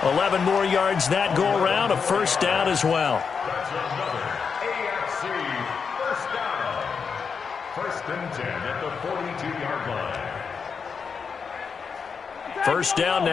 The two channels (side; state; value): right; quieter; 5.9 dB